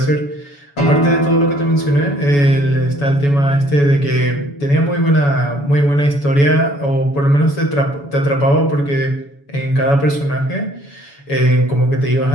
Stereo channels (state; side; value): late; right; 7.1 ms